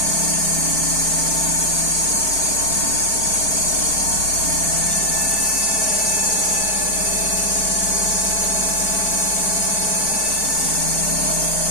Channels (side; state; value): right; late; 4.5 ms